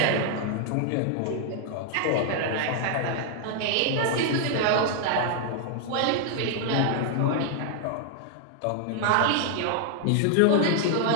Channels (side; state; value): both; different; correlation 0.00